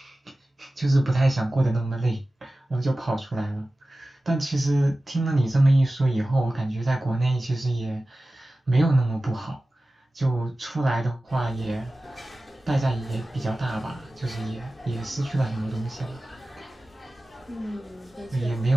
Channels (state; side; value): normal; both; correlation 0.96